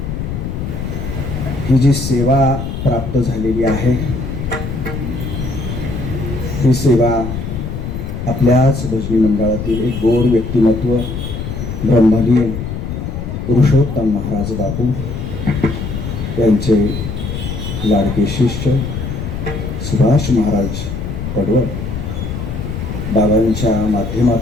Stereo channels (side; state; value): left; noise; rumble, 5 dB below the sound